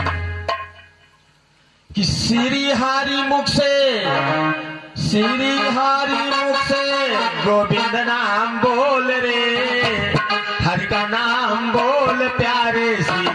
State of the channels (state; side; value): identical; both; correlation 1.00